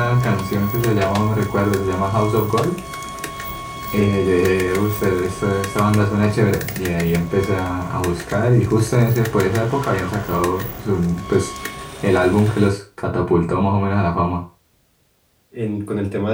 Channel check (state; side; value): identical; both; correlation 1.00